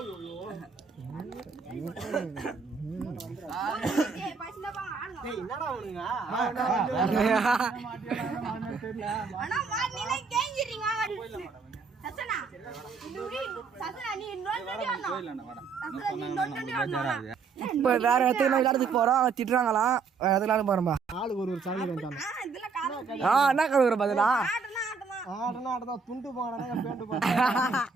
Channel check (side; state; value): left; quieter; 5.2 dB